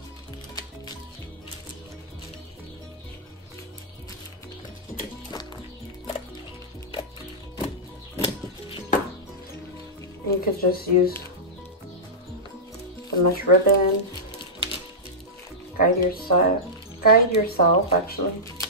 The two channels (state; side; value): normal; both; correlation -0.13